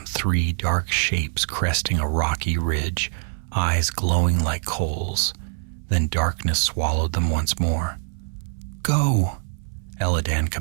3 dark shapes cresting a rocky ridge, eyes glowing like coals. Then darkness swallowed them once more. Go, Eladan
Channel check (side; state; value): left; silent; 63 dB below the other